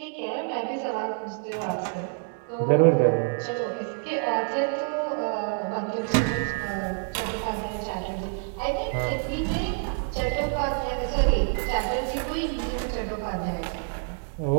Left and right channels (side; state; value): left; silent; 60 dB below the other